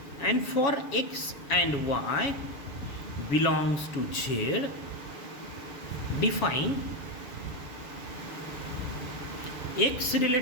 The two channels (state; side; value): late; right; 7.1 ms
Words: and for x and y belongs to Z, define x